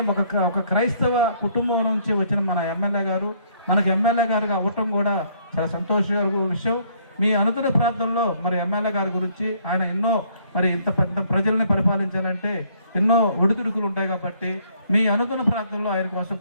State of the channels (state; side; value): inverted; both; correlation -0.65